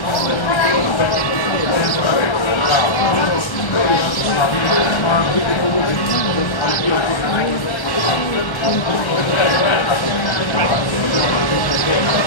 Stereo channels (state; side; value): late; right; 1.1 ms